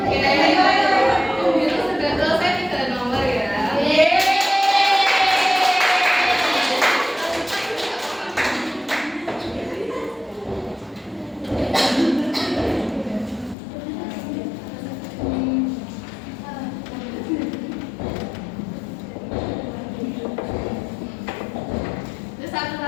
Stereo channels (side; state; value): right; drops out; at 13.6 s